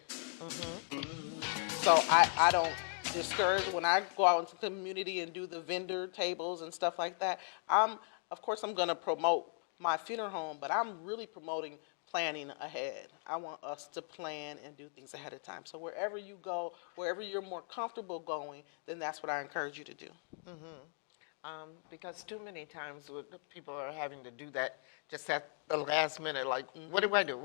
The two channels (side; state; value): right; silent; 53 dB below the other